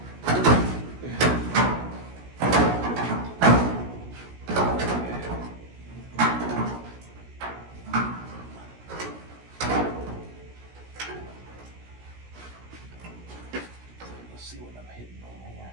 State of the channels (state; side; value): late; left; 17 ms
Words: See what I'm hitting on here.